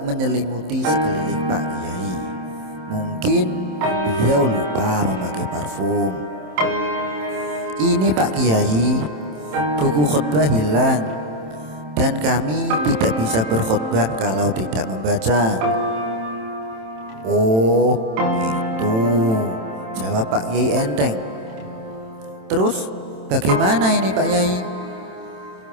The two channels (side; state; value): left; late; 27 ms